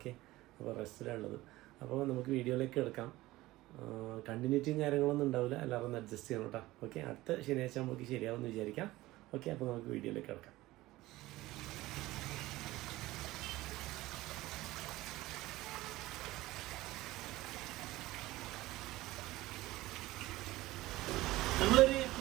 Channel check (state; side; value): quieter; left; 17.9 dB